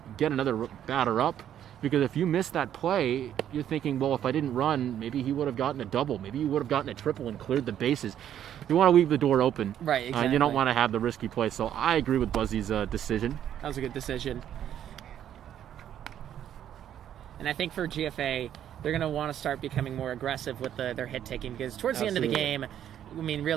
get another batter up. Because if you miss that play, you're thinking, well, if I didn't run, maybe he would have gotten a double. Maybe he would have gotten a triple and cleared the bases. You want to leave the door open. Right, exactly. You don't want to have the risky play. So I agree with Buzzy's decision. That was a good decision. And I think for GFA, they're going to want to start becoming more aggressive with their hit taking because towards the end of the game, I mean,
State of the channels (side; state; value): left; quieter; 10.4 dB